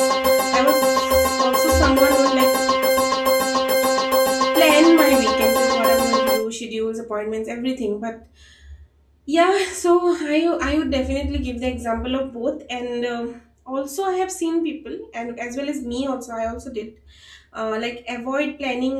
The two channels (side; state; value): both; identical; correlation 1.00